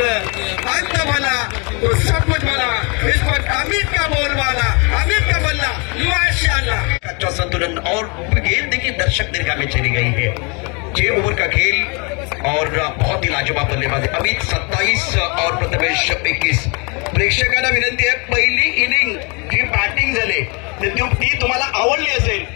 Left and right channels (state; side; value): quieter; right; 31.4 dB